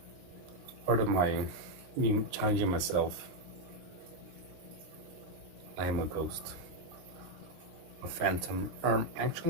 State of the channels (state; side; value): late; left; 23 ms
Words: Part of me challenging myself. I am a ghost. A phantom.